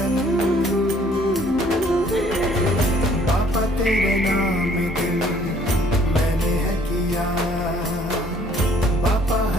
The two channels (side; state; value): both; normal; correlation 0.60